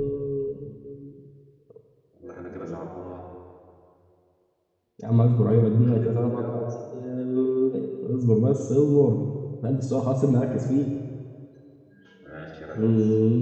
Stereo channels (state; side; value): identical; both; correlation 1.00